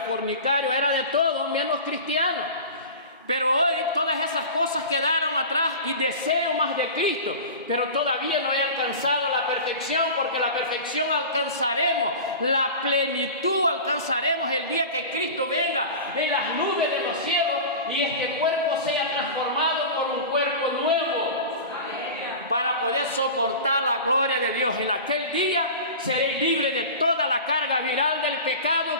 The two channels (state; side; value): inverted; both; correlation -0.33